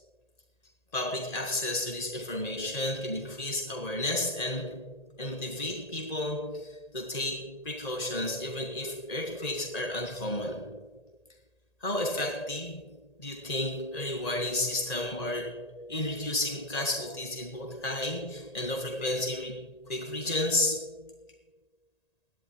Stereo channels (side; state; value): right; late; 1.8 ms